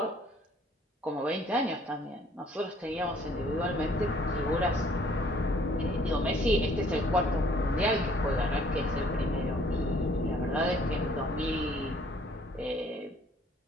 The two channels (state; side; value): normal; both; correlation 0.60